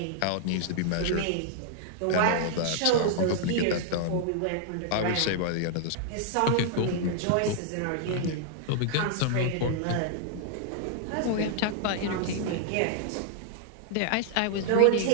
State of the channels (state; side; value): different; both; correlation -0.01